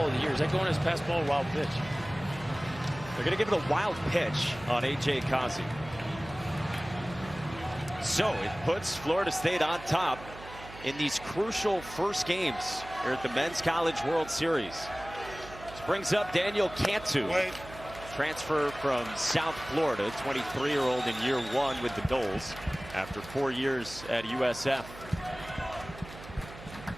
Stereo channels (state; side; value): noise; right; hum, 16 dB below the sound